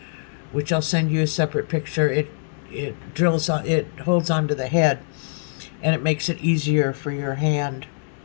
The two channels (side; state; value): right; silent; digital silence